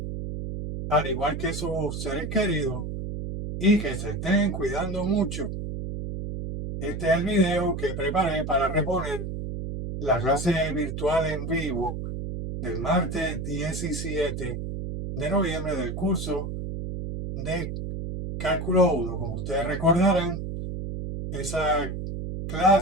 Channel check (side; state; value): right; noise; hum, 5 dB below the sound